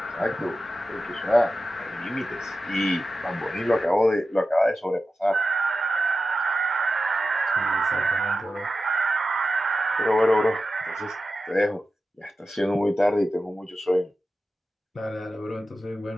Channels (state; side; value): normal; both; correlation 0.92